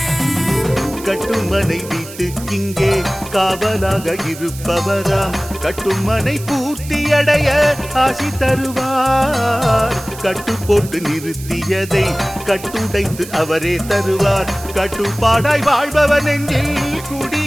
கட்டுமனை வீட்டுக்கிங்கே காவலாக இருப்பவராம், கட்டுமனை பூர்த்தியடைய ஆசி தருவார், கட்டு போட்டு நிறுத்தியதை கட்டுடைத்து அவரே தருவார், கட்டுப்பாடாய் வாழ்பவர் நெஞ்சில்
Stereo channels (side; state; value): right; noise; hiss, 15 dB below the sound